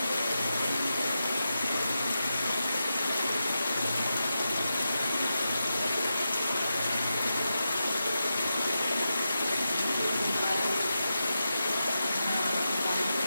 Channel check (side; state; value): both; inverted; correlation -0.90